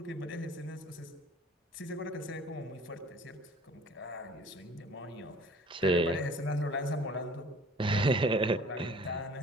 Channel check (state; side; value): normal; both; correlation 0.50